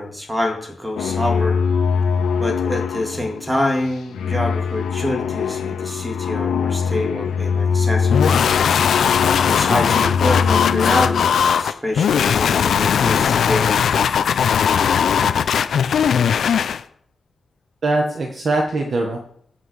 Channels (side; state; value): right; quieter; 5.3 dB